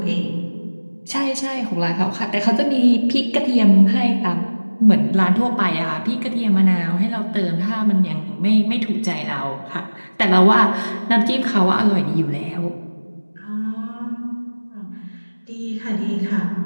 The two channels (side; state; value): both; inverted; correlation -1.00